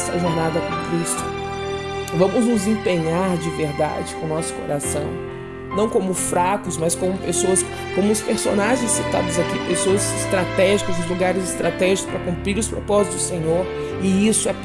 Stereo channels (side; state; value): both; identical; correlation 1.00